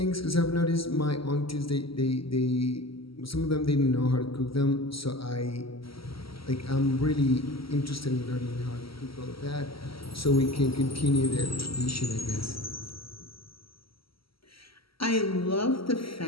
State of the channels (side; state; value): right; late; 0.75 ms